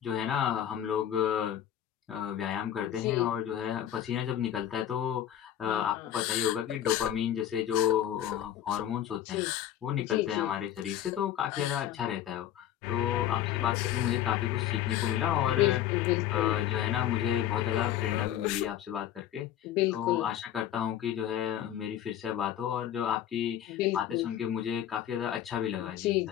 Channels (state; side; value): quieter; right; 11.1 dB